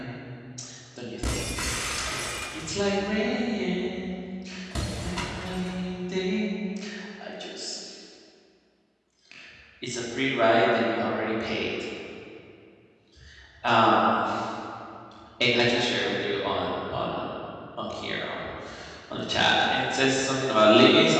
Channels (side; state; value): both; identical; correlation 1.00